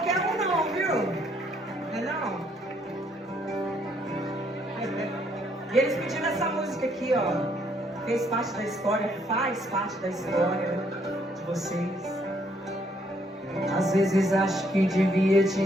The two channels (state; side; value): normal; both; correlation 0.69